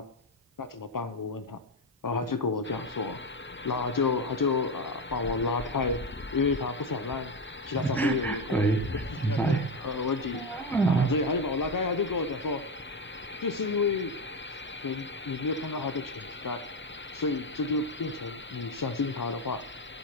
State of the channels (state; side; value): normal; both; correlation 0.13